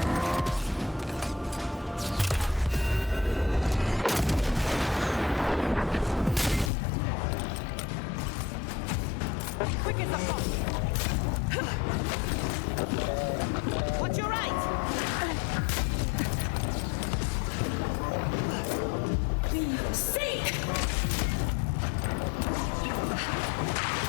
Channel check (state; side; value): drops out; right; at 6.7 s